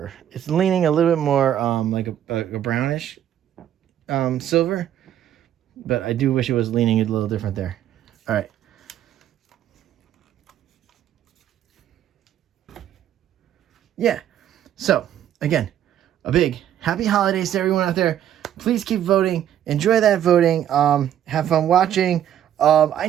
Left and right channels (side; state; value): left; quieter; 10.9 dB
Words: It's leaning a little bit more like a brownish silver, but I do wish it was leaning a little different there. All right. Yeah. So, again, a big happy holidays to everyone out there. Please keep voting. Enjoy that voting. Have fun watching. I